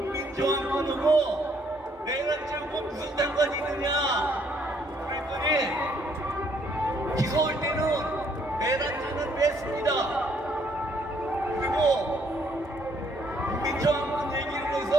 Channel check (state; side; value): normal; both; correlation 0.67